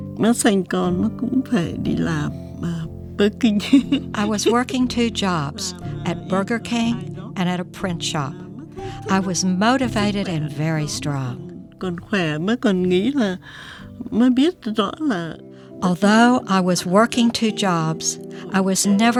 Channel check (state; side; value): identical; both; correlation 1.00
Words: Nó sinh con nó cũng phải đi làm Burger King. I was working 2 jobs, at Burger King and at a print shop. I was motivated and very strong. Còn khỏe mới còn nghĩ là mới biết rõ là Although I was working 2 jobs, I was